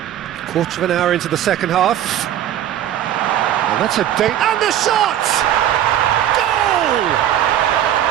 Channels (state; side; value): quieter; left; 11.3 dB